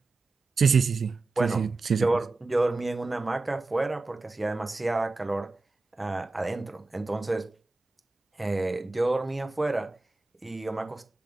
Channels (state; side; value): quieter; left; 3.3 dB